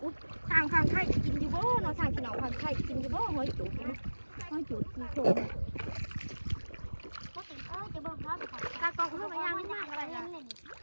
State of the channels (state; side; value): inverted; both; correlation -1.00